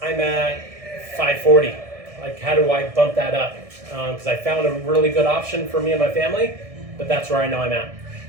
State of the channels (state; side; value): late; left; 1.6 ms